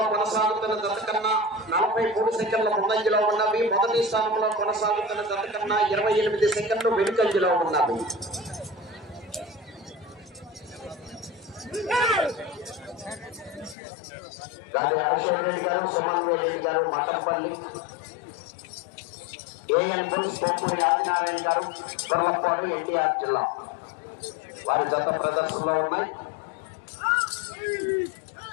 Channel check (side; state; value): right; drops out; at 13.8 s